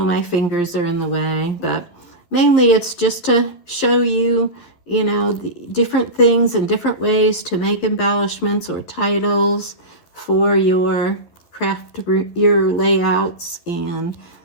my fingers are in the way, but mainly it's just to show you, you know, the different things and different ways to make embellishments or titles for your craft, your layouts. And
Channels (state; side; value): late; right; 12 ms